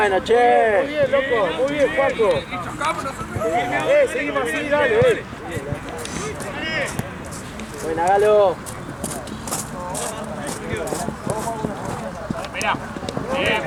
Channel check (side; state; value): both; identical; correlation 1.00